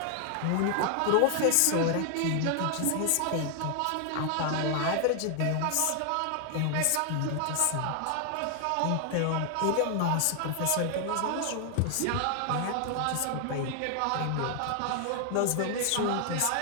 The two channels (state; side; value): different; both; correlation 0.00